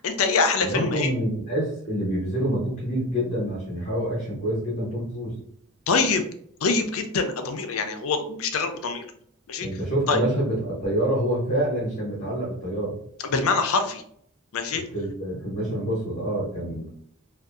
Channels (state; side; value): normal; both; correlation 0.22